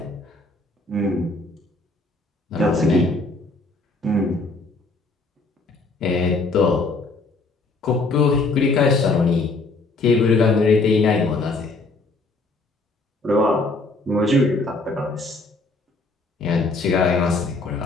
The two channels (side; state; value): right; quieter; 3.4 dB